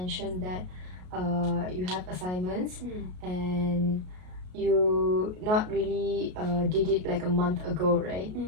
that you have assignments and you not really did it like a month ago, right?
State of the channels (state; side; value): late; left; 33 ms